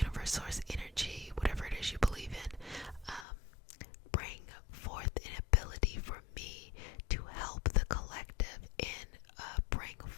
source, energy, whatever it is you believe in, bring forth an ability for me to help the collective and bring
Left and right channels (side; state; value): right; drops out; at 3.2 s